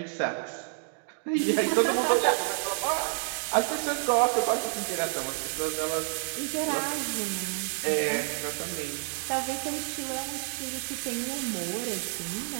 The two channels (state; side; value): silent; left; 55 dB below the other